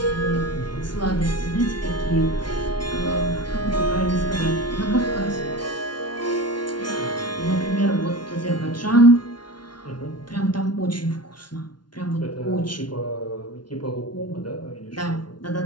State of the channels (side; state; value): right; late; 0.70 ms